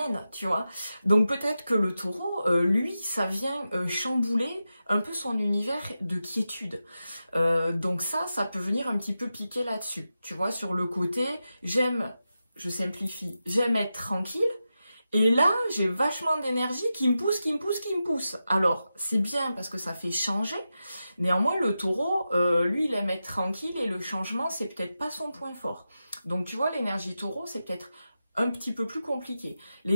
tu vois. Donc peut-être que le taureau, lui, ça vient chambouler un peu son univers de quiétude. Donc ça peut venir un petit peu piquer là-dessus, tu vois, sur le côté, je simplifie, j'aime être tranquille, et là, j'ai vachement d'énergie qui me pousse. Alors, c'est bien parce que ça fait changer. Néanmoins, le taureau, lui, il aime être tranquille et le changement, c'est peut-être pas son point fort. Donc, tu vois, l'énergie taureau, c'est peut-être un petit peu plus compliqué.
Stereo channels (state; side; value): inverted; both; correlation -0.91